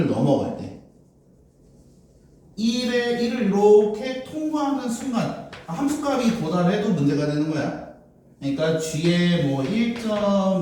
넘어갈 때 1을 이렇게 통과하는 순간 함수값이 도달해도 문제가 되는 거야. 그러니까 g에 뭐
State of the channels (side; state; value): both; identical; correlation 1.00